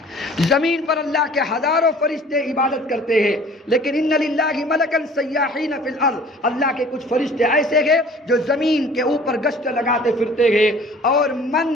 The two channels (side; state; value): both; normal; correlation 0.49